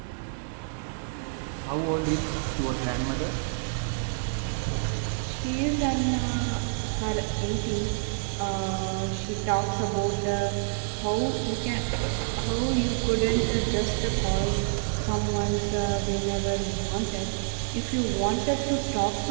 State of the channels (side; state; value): left; silent; 59 dB below the other